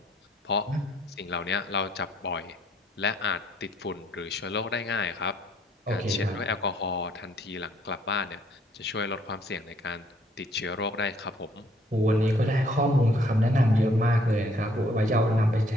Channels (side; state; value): both; normal; correlation 0.64